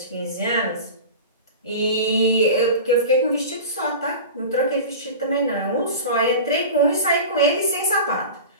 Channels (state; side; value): inverted; both; correlation -0.32